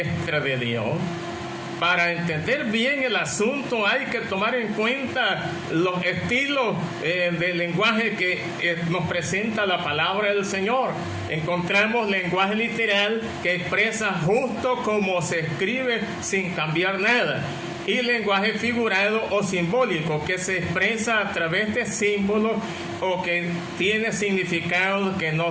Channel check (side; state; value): both; identical; correlation 1.00